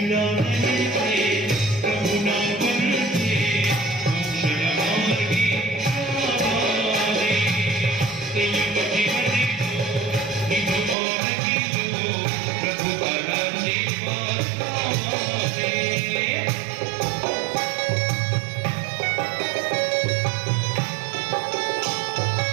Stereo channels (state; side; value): drops out; left; at 11.0 s